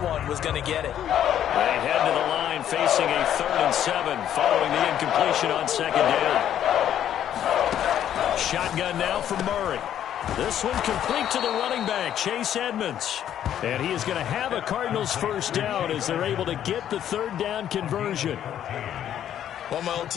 was going to get it. They head to the line facing a 3rd and 7 following the incompletion on 2nd down. Shotgun now for Murray. This one complete to the running back, Chase Edmonds. And he is going to have a Cardinals first down as they're able to get the 3rd down conversion. One of my old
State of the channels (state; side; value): quieter; right; 10.5 dB